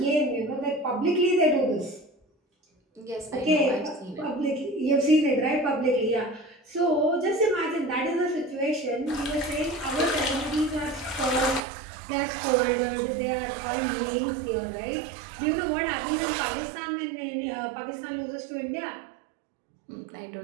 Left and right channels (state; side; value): drops out; left; at 11.6 s